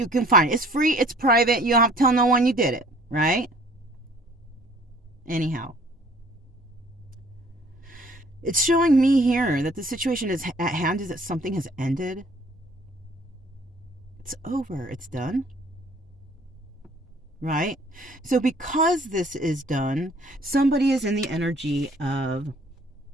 can find it. It's free, it's private, you don't have to tell no one you did it, right? Anyhow, it's showing me here that the situation is at hand, is that something has ended. It's over, it's done. Right? So because this is done, somebody is in the energy of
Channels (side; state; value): both; normal; correlation 0.55